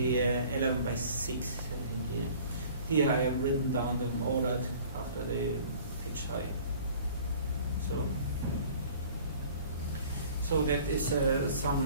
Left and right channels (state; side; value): inverted; both; correlation -0.49